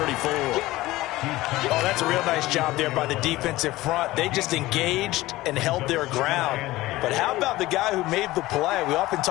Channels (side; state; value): right; quieter; 18.0 dB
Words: Oh, that's a real nice job there by the defensive front. They just engaged and held their ground. But how about the guy who made the play? We often